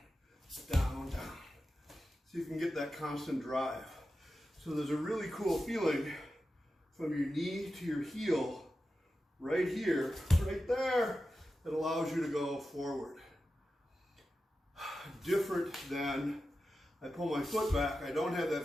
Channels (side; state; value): both; normal; correlation 0.92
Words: down, down. So you can get that constant drive. So there's a really cool feeling from your knee to your heel, right here, right there, that allows you to go forward. Different than I pull my foot back, I don't have that